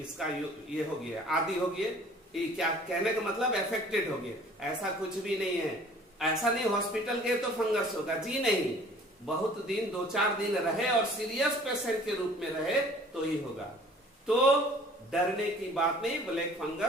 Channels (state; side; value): normal; both; correlation 0.51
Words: ये हो गया, आदि हो गया, ये क्या कहने का मतलब अफेक्टेड हो गया, ऐसा कुछ भी नहीं है। ऐसा नहीं हॉस्पिटल गए तो फंगस होगा, जी नहीं। बहुत दिन, 2-4 दिन रहे और सीरियस पेशेंट के रूप में रहे तो ही होगा। तो डरने की बात नहीं, ब्लैक